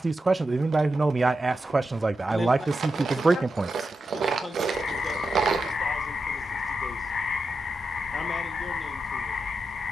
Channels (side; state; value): both; normal; correlation 0.89